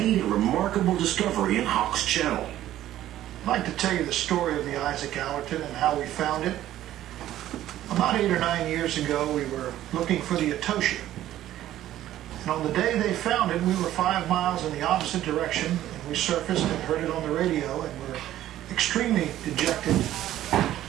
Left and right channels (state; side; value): quieter; left; 13.2 dB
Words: a remarkable discovery in Hawks Channel. I'd like to tell you the story of the Isaac Allerton and how we found it. About 8 or 9 years ago, we were looking for the Etosia. And on the day they found it, we were 5 miles in the opposite direction, and we surfaced and heard it on the radio, and were extremely dejected.